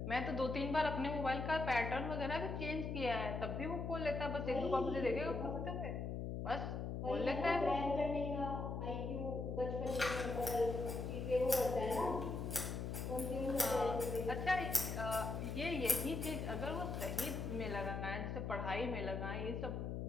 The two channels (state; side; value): noise; left; hum, 3 dB below the sound